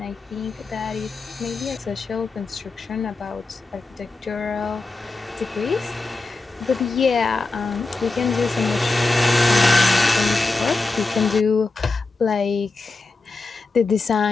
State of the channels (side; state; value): right; quieter; 3.4 dB